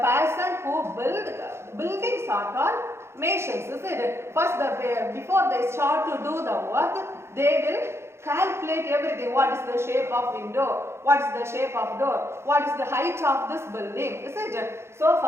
who buildings are called masons. Is it? First, before they start to do the work, they will calculate everything. What is the shape of window? What is the shape of door? What is the height of this building? Is it? So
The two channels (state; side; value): late; left; 0.12 ms